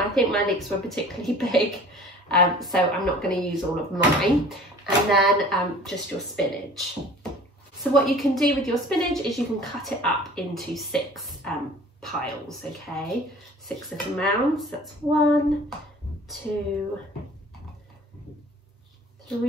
think my leeks were particularly big, so I'm not going to use all of mine. And then just your spinach. So what you can do with your spinach is you can cut it up into 6 piles, okay? 6 little mounds. That's 1, 2,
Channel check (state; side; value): normal; both; correlation 0.46